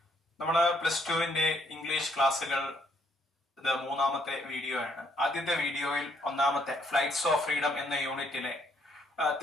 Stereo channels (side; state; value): both; normal; correlation 0.69